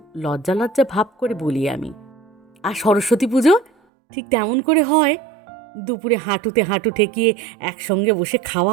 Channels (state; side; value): drops out; left; at 3.7 s